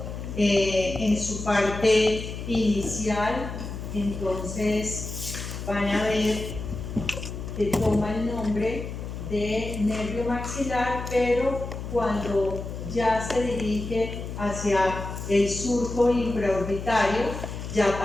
En su parte inicial, entonces van a ver que toma el nombre de nervio maxilar, pero cuando ya se dirige hacia el surco infraorbitario, ya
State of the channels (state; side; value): noise; left; hum, 7 dB below the sound